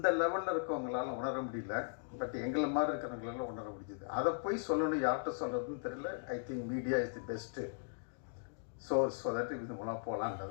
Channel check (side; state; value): right; silent; digital silence